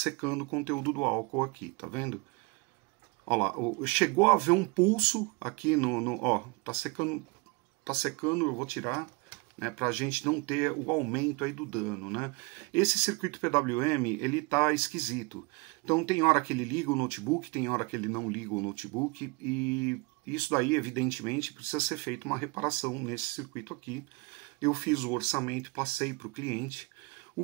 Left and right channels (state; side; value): quieter; left; 27.7 dB